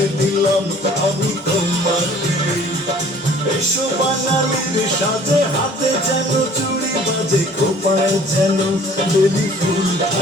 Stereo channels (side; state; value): both; normal; correlation 0.52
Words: দিলাম আমি তোমাকে এসো বাঙালির সাথে হাতে যেন চুড়ি বাজে খোপায় যেন বেলি ফুল